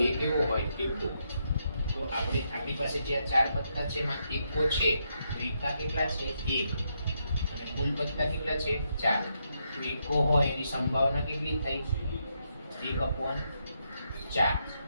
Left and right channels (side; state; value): both; inverted; correlation -0.80